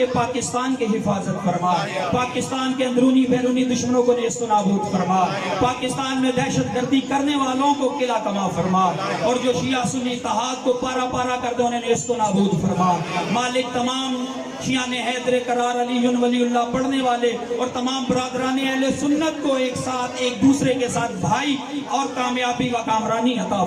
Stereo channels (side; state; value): both; identical; correlation 1.00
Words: پاکستان کی حفاظت فرما، پاکستان کے اندرونی بیرونی دشمنوں کو نیست و نابود فرما، پاکستان میں دہشت گردی کرنے والوں کو قلعہ کما فرما، اور جو شیعہ سنی اتحاد کو پارا پارا کر دے انہیں نیست و نابود فرما. مالک تمام شیان حیدر قرار علی ولی اللہ پڑھنے والے اور تمام برادران اہل سنت کو ایک ساتھ ایک دوسرے کے ساتھ بھائی اور کامیابی و کامرانی عطا